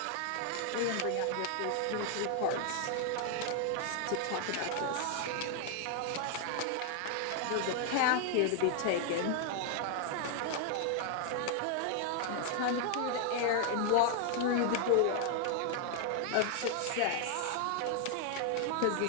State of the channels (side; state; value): both; different; correlation 0.00